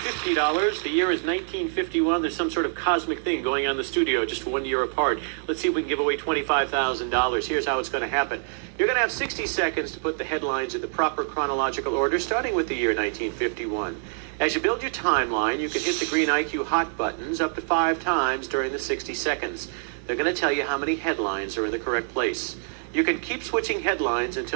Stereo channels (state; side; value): silent; left; 61 dB below the other